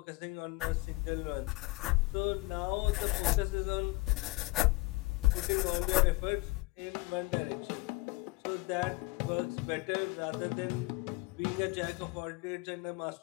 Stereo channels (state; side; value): quieter; right; 22.3 dB